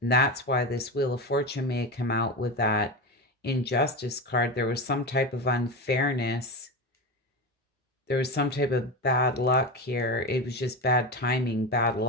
that's why this Wheel of Fortune may have come out with that injustice card. There was some type of unfairness. There was some type of bad luck here. It was just bad timing, bad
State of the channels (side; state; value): both; normal; correlation 0.20